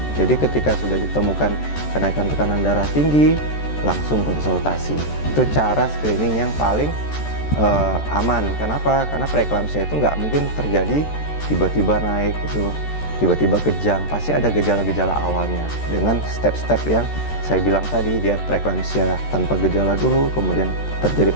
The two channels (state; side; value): late; right; 13 ms